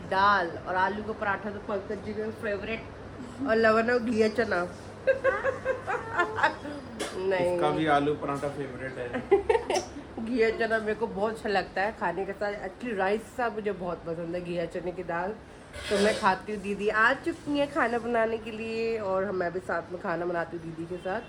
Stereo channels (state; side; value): identical; both; correlation 1.00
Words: दाल। और आलू का पराठा तो पंकज जी का फेवरेट, और लवन्या घिया चना। नहीं, इसका भी आलू पराठा फेवरेट है। घिया चना मेरे को बहुत अच्छा लगता है खाने के साथ। एक्चुअली राइस सा मुझे बहुत पसंद है, घिया चने की दाल तो मैं खाती हूँ। दीदी आ चुकी है खाना बनाने के लिए, और मैं भी साथ में खाना बनाती हूँ दीदी के साथ,